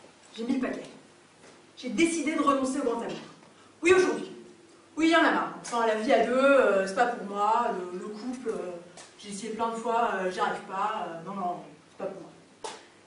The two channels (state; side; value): identical; both; correlation 1.00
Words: J'ai mis le paquet. J'ai décidé de renoncer au grand amour. Oui, aujourd'hui. Oui, il y en a marre. Enfin, la vie à deux, c'est pas pour moi. Le couple, j'ai essayé plein de fois, j'y arrive pas. Non, non, c'est pas pour moi.